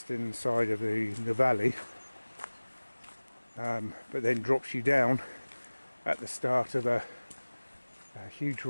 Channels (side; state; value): both; inverted; correlation -1.00